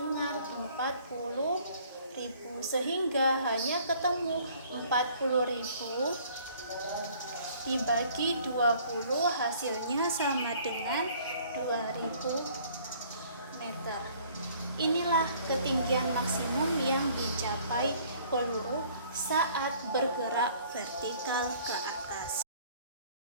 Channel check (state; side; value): inverted; both; correlation -0.56